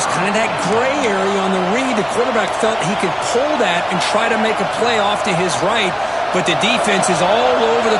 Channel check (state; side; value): identical; both; correlation 1.00